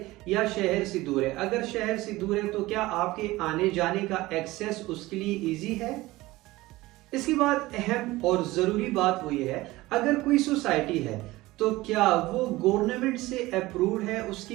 या शहर से दूर है। अगर शहर से दूर है तो क्या आपके आने जाने का एक्सेस उसके लिए ईजी है। इसके बाद अहम और जरूरी बात वो ये है, अगर कोई सोसाइटी है तो क्या वो गवर्नमेंट से अप्रूव्ड है, उसकी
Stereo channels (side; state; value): left; quieter; 19.0 dB